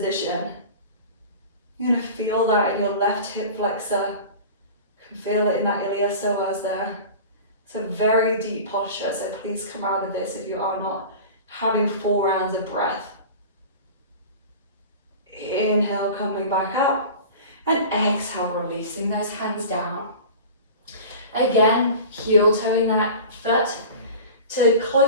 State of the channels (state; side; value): inverted; both; correlation -0.36